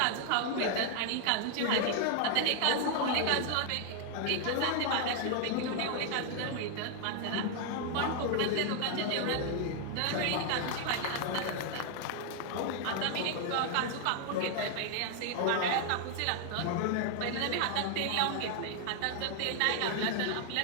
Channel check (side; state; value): both; different; correlation 0.00